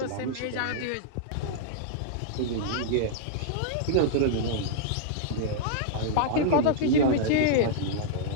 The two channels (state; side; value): different; both; correlation -0.02